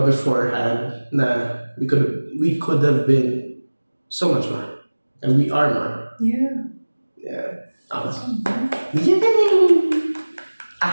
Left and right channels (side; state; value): both; inverted; correlation -1.00